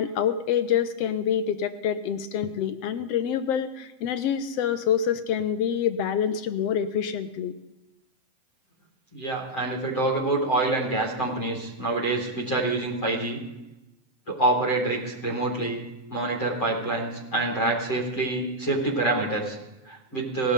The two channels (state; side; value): late; right; 7.8 ms